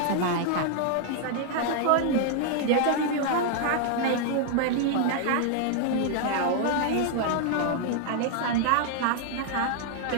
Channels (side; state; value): both; different; correlation 0.00